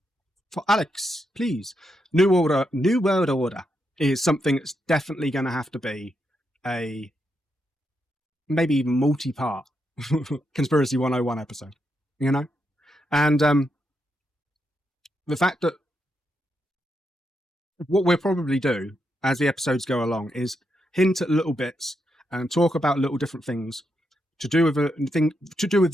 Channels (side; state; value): both; normal; correlation 0.82